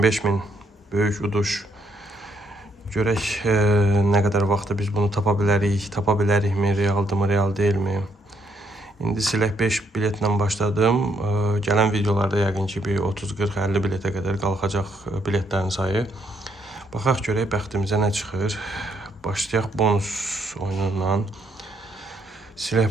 böyük uduş. Görək nə qədər vaxtda biz bunu tapa bilərikmi, realdırmı, real deyilmi? İndi silək 5 biletlə başladım. Gələn videolarda yəqin ki bir 30, 40, 50 biletə qədər qalxacaq biletlərin sayı. Baxaq görək bəxtimizə nə çıxır. Başlayaq bonus oyunundan.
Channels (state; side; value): normal; both; correlation 0.73